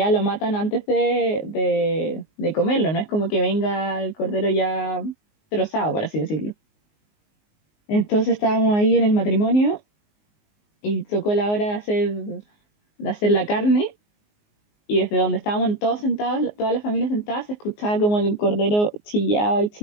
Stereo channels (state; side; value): late; right; 19 ms